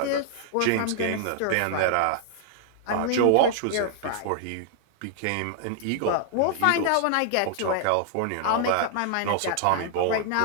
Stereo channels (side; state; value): both; different; correlation -0.01